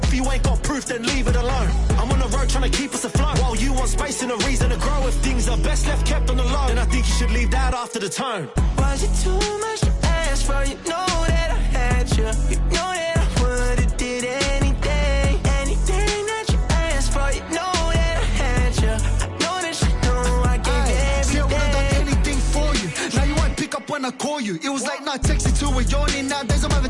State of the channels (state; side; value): identical; both; correlation 1.00